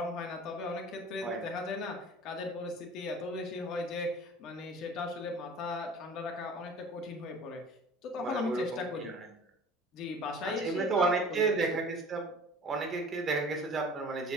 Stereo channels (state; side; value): normal; both; correlation 0.44